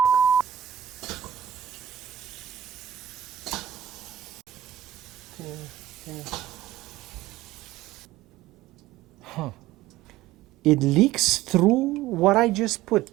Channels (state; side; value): quieter; left; 12.2 dB